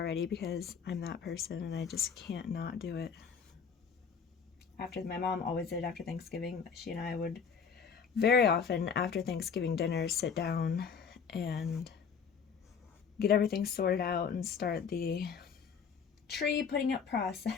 because I'm that person and I just can't not do it. My mom always did after Thanksgiving. She and I would very often after Thanksgiving dinner sit down and get everything sorted out and start the tree putting up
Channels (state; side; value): quieter; right; 6.3 dB